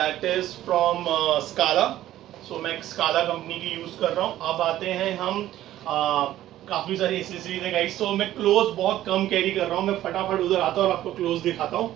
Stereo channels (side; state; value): left; quieter; 13.6 dB